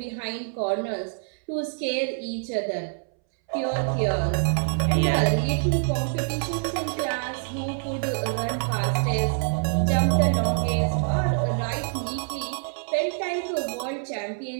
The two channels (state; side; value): silent; left; 61 dB below the other